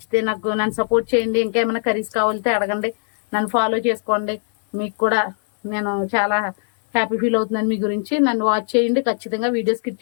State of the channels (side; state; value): right; silent; 61 dB below the other